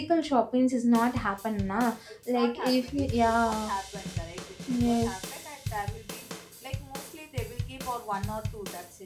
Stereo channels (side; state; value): both; identical; correlation 1.00